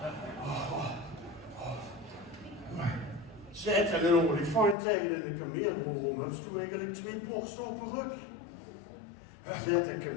Zet er een olifant tegen in de kameel. Waarom heb je eigenlijk 2 borsten op een rug? Zet een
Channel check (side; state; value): right; drops out; at 4.8 s